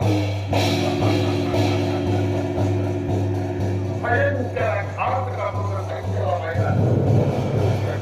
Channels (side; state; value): both; identical; correlation 1.00